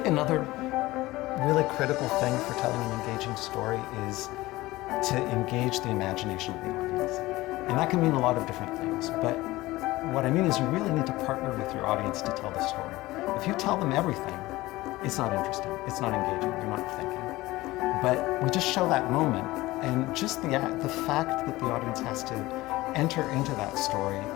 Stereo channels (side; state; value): right; quieter; 18.8 dB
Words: another really critical thing for telling an engaging story is to engage the imagination of the audience. And that can mean a lot of different things, but what I mean is you really need to partner with your audience to tell the story. If you tell them everything, it's not interesting, it's not engaging, you're not thinking. But we just show that moment, and just the fact that the audience has to enter into that story